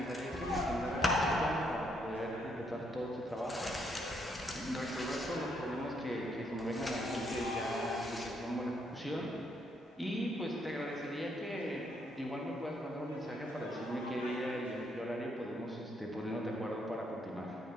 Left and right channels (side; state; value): both; normal; correlation 0.74